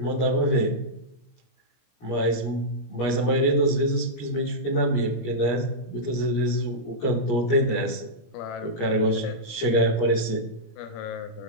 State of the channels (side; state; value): right; late; 17 ms